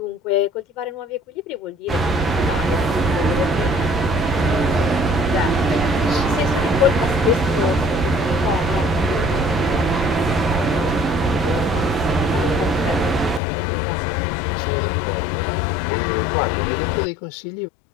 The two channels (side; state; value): right; drops out; at 13.4 s